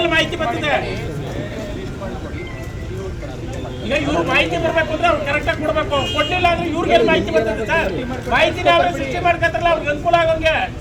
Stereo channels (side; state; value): both; identical; correlation 1.00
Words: ಮಾಹಿತಿ ಬರ್ತದೆ. ಈಗ ಇವ್ರು ಮಾಹಿತಿ ಬರ್ಬೇಕು ಅಂದ್ರೆ ಅವ್ರು ಕರೆಕ್ಟಾಗಿ ಕೊಡ್ಬೇಕು. ಕೊಡ್ಲಿಲ್ಲ ಅಂದ್ರೆ ಇವ್ರಿಗೆಲ್ಲ ಮಾಹಿತಿ ಬರ್ತದೆ ಸರ್. ಮಾಹಿತಿನ ಅವ್ರು ಸೃಷ್ಟಿ ಮಾಡ್ಕೊತಾರಲ್ಲ, ಅವ್ರಿಗೆ ಅನುಕೂಲ ಆಗೋಂಗೆ.